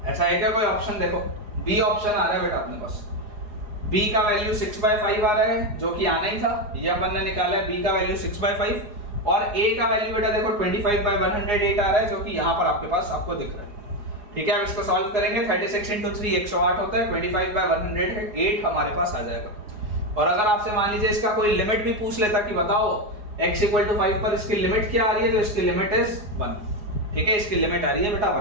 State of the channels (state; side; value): late; left; 4.8 ms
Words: ऐसा है क्या कोई ऑप्शन? देखो बी ऑप्शन आ रहा है बेटा अपने पास, b का वैल्यू 6/5 आ रहा है, जो कि आना ही था, ये अपन ने निकाला है, b का वैल्यू 6/5, और a का वैल्यू बेटा देखो 25/108 आ रहा है, जो कि यहाँ पर आपके पास आपको दिख रहा है, ठीक है। अब इसको सॉल्व करेंगे, 36 into 3 108 होता है, 25/108 हमारे पास आ जाएगा। और अगर आपसे मान लीजिए इसका कोई लिमिट भी पूछ लेता कि बताओ x = 5 पर इसकी लिमिट क्या आ रही है, तो इसकी लिमिट इज 1, ठीक है, इसकी लिमिट आ रही है बेटा